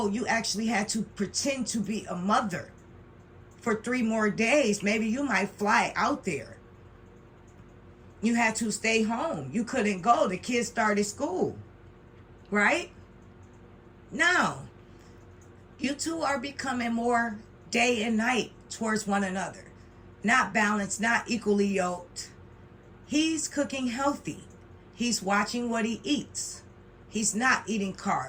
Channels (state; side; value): identical; both; correlation 1.00